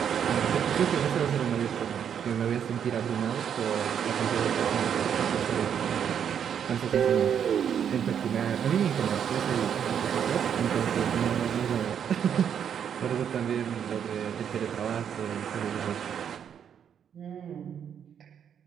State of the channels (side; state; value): left; quieter; 8.4 dB